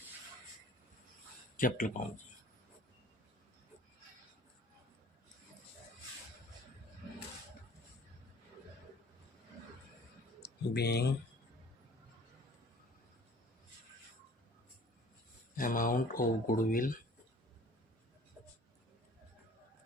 capital account जी। being amount of goodwill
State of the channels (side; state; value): both; normal; correlation 0.50